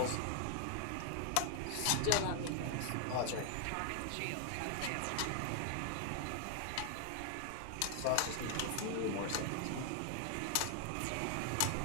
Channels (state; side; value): different; both; correlation 0.00